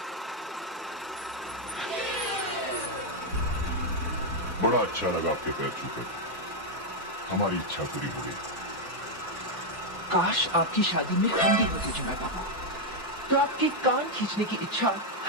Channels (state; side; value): normal; both; correlation 0.00